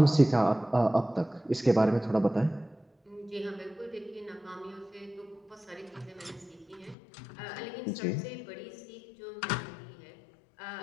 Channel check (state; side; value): drops out; right; at 7.0 s